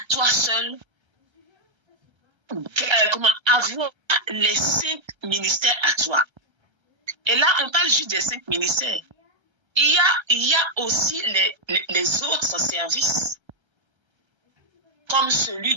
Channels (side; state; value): left; late; 1.3 ms